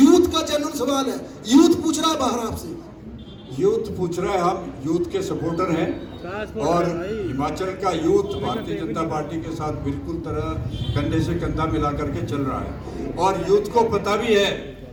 का जेन्युइन सवाल है, यूथ पूछ रहा है बाहर आपसे। यूथ पूछ रहा है, हम यूथ के सपोर्टर हैं, और हिमाचल का यूथ भारतीय जनता पार्टी के साथ बिल्कुल तरह कंधे से कंधा मिला करके चल रहा है। और यूथ को पता भी है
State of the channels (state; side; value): identical; both; correlation 1.00